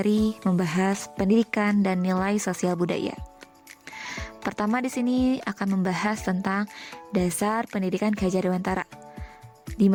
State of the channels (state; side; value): identical; both; correlation 1.00